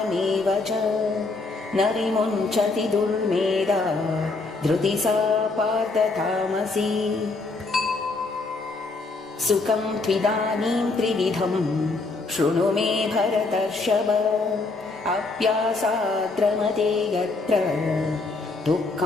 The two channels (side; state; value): right; quieter; 3.6 dB